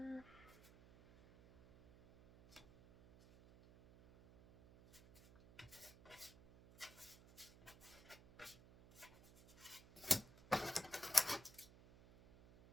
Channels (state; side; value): noise; right; hum, 20 dB below the sound